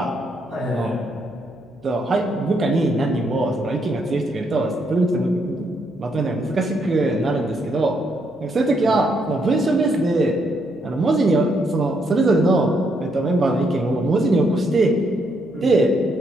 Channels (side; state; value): right; noise; hum, 28 dB below the sound